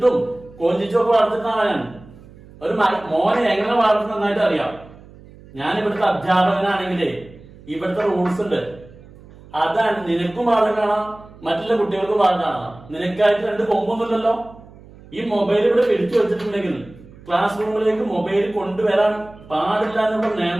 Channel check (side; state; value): right; noise; hum, 22 dB below the sound